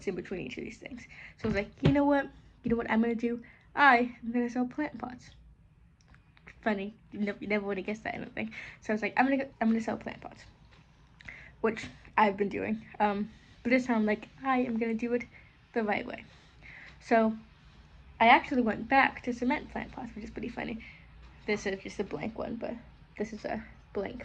in between each of these things. So I was like, you know what? You know what I'm gonna do? I am gonna sell plant pots. Funny, you never would have guessed that, I don't think. So I was like, I'm gonna sell plant pots, which I've been doing. But this time, I'm like, I am gonna do it the right way. So I actually went back to cement plant pots, which is pretty funny. This is just a blank one, but this is a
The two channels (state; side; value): identical; both; correlation 1.00